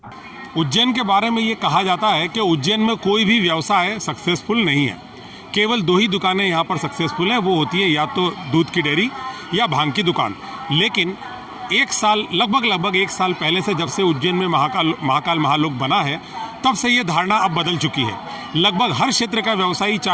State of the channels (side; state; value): both; identical; correlation 1.00